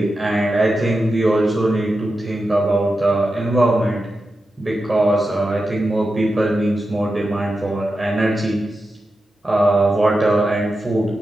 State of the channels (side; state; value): both; normal; correlation 0.90